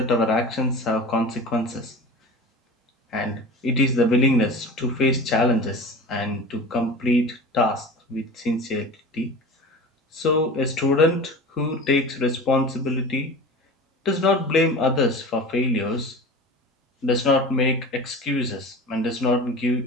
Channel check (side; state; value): both; normal; correlation 0.35